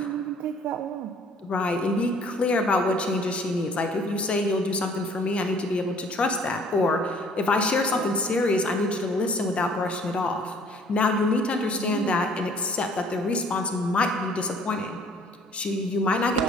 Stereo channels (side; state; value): both; normal; correlation 0.56